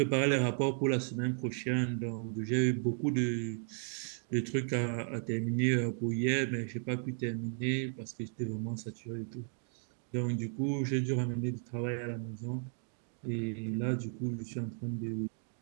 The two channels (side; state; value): left; silent; 55 dB below the other